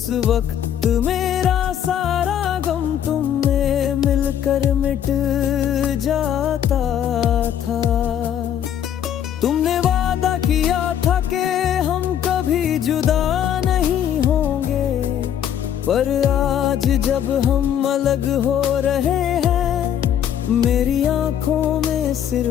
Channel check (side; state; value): right; quieter; 9.7 dB